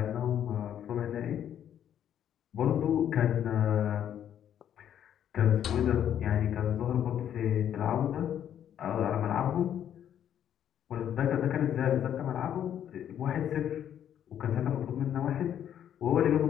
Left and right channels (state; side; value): quieter; right; 9.9 dB